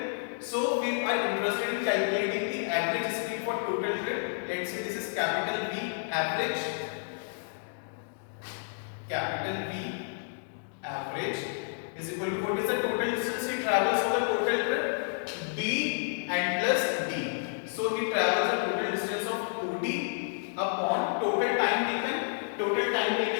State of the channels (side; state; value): right; silent; digital silence